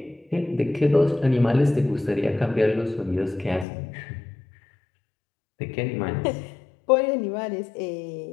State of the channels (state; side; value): drops out; right; at 3.7 s